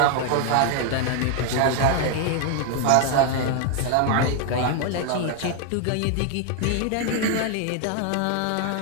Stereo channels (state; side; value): different; both; correlation 0.00